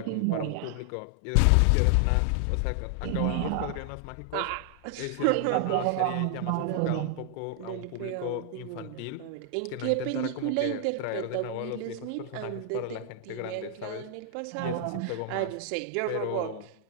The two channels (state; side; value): different; both; correlation 0.00